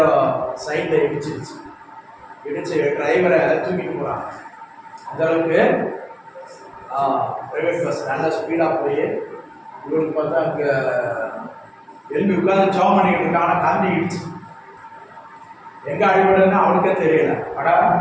சைடில் இடிச்சிருச்சு. டிரைவரை தூக்கிட்டு போகிறாங்க. அந்தளவுக்கு ப்ரைவேட் பஸ் நல்லா ஸ்பீடாக போய் இவருக்கு பார்த்தா அங்கே எழுப்பி உட்காந்து ஜாப் பண்ணிக்கிட்டு இருக்காங்க. காந்திடுச்சு. எங்கே அடிபடுதுன்னா அவனுக்கே தெரியல. அடா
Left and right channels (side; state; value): both; identical; correlation 1.00